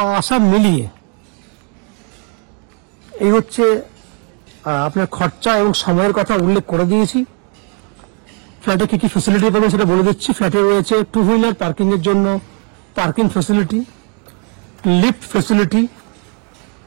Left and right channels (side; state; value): left; quieter; 38.3 dB